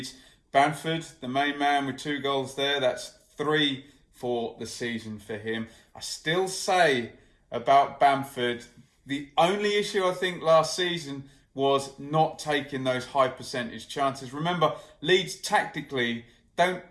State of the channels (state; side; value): identical; both; correlation 1.00